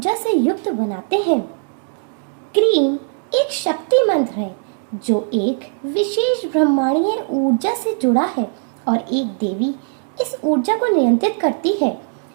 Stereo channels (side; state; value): left; silent; digital silence